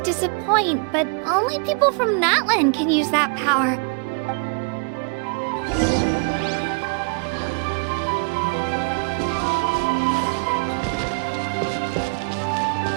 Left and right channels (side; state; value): left; quieter; 37.5 dB